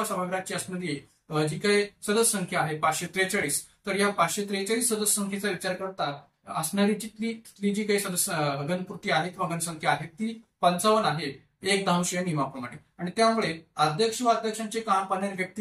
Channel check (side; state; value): both; identical; correlation 1.00